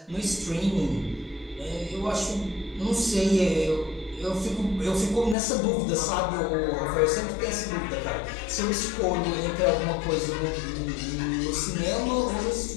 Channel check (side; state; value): right; drops out; at 5.4 s